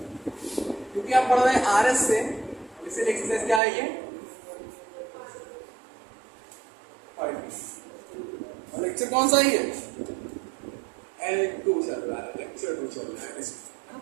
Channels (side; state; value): left; drops out; at 3.6 s